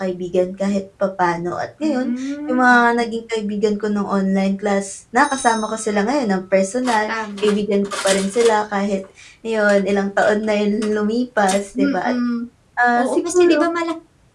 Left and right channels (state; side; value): identical; both; correlation 1.00